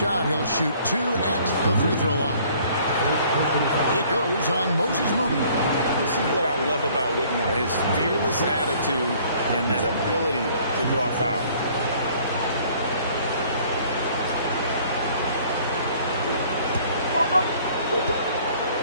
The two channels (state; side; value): inverted; both; correlation -0.57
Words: He'll shoot 2 at the free throw line. It goes on Moses Moody. This is what I love about Whitmore, his fearless attitude and that ability to draw foul.